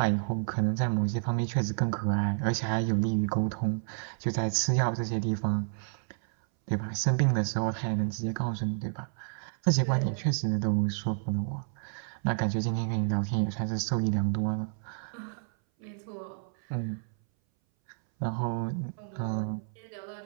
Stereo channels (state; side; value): silent; left; 58 dB below the other